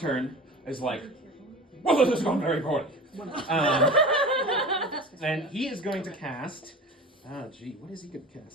is like, well, this has gone very poorly. And he is going to cast. What is he going to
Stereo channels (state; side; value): normal; both; correlation 0.35